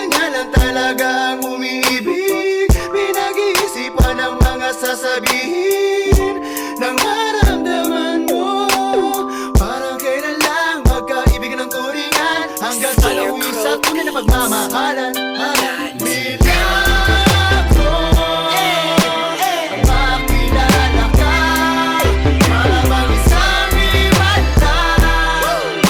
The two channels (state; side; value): identical; both; correlation 1.00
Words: lang talaga ang umiibig. Pinag-iisipan ang mga sasabihin ng maramdaman mo. Parang kailan lang magkaibigan ng turingan, hanggang sa nauwi sa tunay na pagmamahalan.